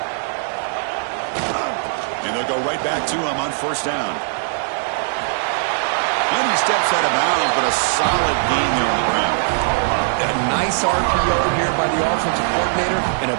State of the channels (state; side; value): silent; left; 66 dB below the other